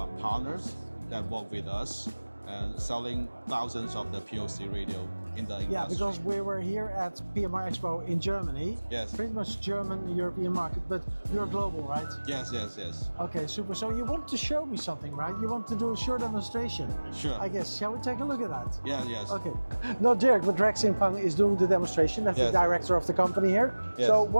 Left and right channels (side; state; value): both; inverted; correlation -1.00